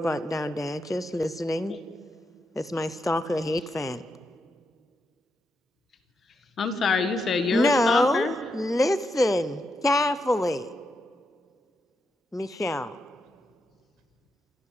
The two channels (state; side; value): normal; both; correlation 0.83